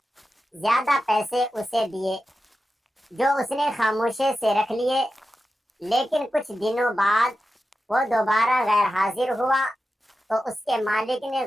زیادہ پیسے اسے دیے جو اس نے خاموشی سے رکھ لیے، لیکن کچھ دنوں بعد وہ دوبارہ غیر حاضر ہوا تو اس کے مالک نے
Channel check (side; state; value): both; normal; correlation 0.91